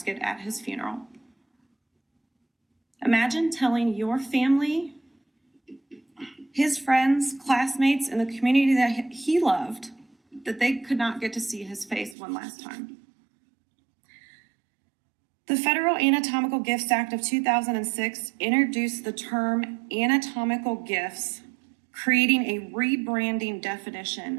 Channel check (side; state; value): left; drops out; at 12.2 s